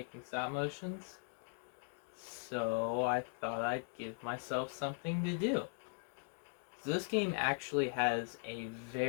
stop motions, so I thought I'd give myself something to do. So this game actually has a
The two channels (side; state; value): right; silent; 51 dB below the other